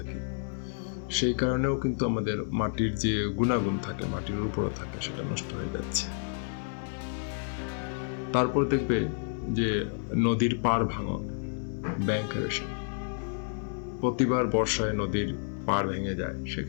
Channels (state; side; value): silent; right; 58 dB below the other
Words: সেই কারণেও কিন্তু আমাদের মাটির যে গুণাগুণ থাকে, মাটির উপরও থাকে, সেটা নষ্ট হয়ে যাচ্ছে। তারপর দেখবে যে নদীর পাড় ভাঙন, ব্যাংক এরোশন, প্রতিবার বর্ষায় নদীর পাড় ভেঙে যায়,